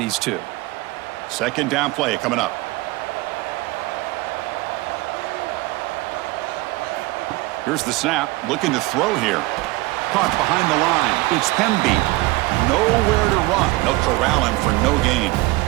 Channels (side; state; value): left; quieter; 20.9 dB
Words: two. 2nd down play coming up. Here's the snap, looking to throw here. Caught behind the line. It's Hemby. Nowhere to run. They'll corral him for no gain.